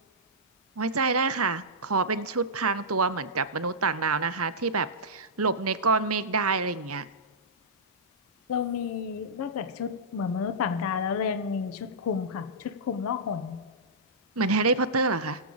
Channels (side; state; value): both; normal; correlation -0.15